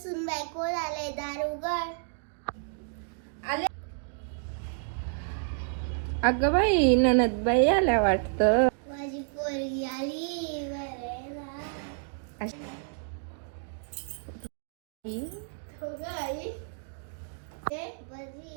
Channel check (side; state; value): left; silent; digital silence